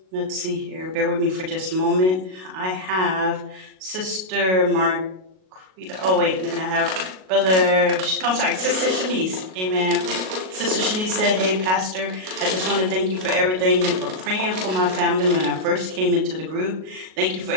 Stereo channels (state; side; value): late; left; 38 ms